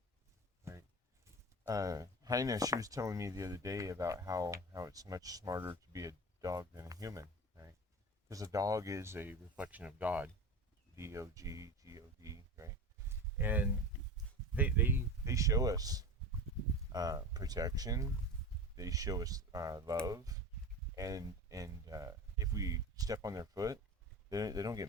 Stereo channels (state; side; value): normal; both; correlation 0.30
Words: right? Heina, she was telling me the other day about how it's much smarter to be a dog than a human, right? Because a dog is a reflection of God, Dog, right? And they show us protection. They show us love, and if we step on their foot, they don't